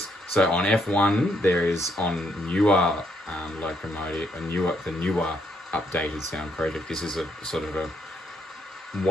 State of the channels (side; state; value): both; normal; correlation 0.74